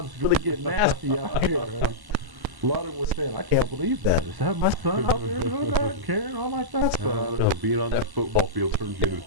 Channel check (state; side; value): late; left; 1.0 ms